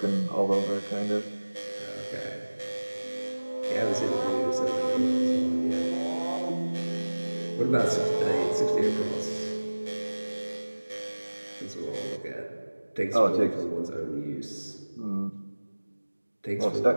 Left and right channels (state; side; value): inverted; both; correlation -1.00